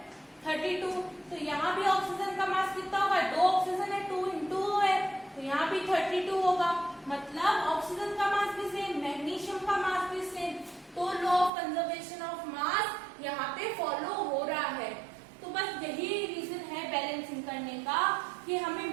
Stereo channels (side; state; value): left; drops out; at 11.5 s